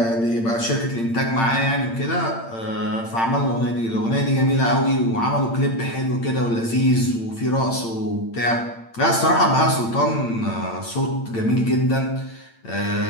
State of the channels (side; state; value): right; late; 8.8 ms